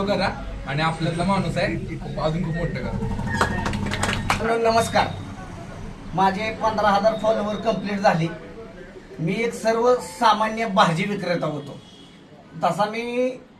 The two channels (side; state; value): both; identical; correlation 1.00